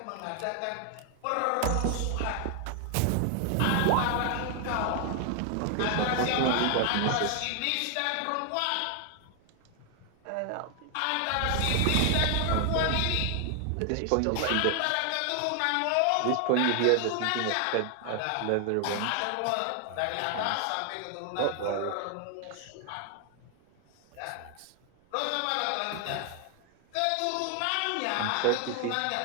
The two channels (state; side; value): different; both; correlation 0.00